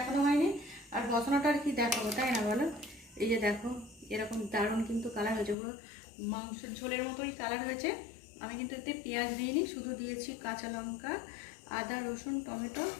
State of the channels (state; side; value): drops out; right; at 5.6 s